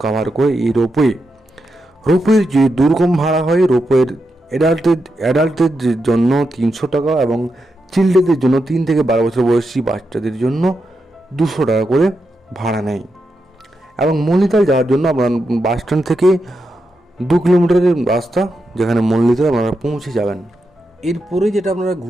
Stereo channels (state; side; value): normal; both; correlation 0.86